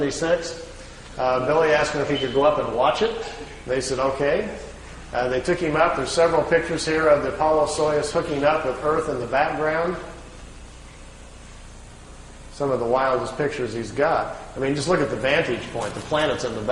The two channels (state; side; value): identical; both; correlation 1.00